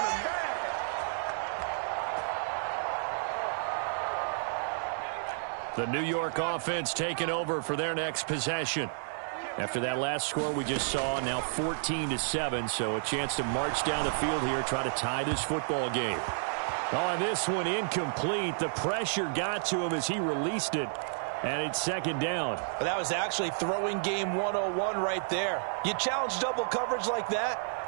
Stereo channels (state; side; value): silent; left; 57 dB below the other